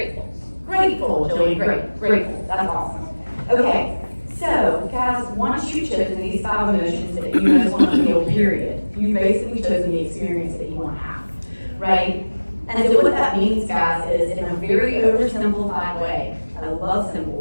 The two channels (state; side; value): inverted; both; correlation -1.00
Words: Grateful, Joey, great. Grateful. That's awesome. Okay. So, guys, once you've chosen these 5 emotions that you most want to feel, period, you've basically chosen the experience that you want to have, right? And so what that means, guys, is in a very oversimplified way, I love